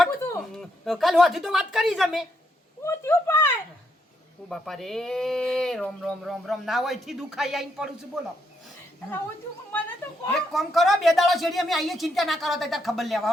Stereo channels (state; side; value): normal; both; correlation 0.77